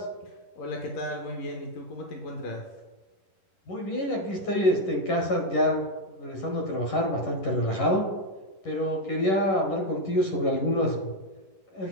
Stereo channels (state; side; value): late; right; 11 ms